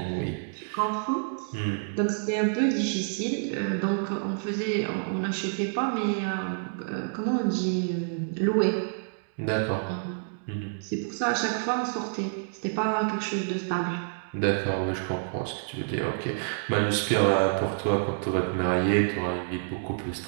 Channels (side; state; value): left; silent; digital silence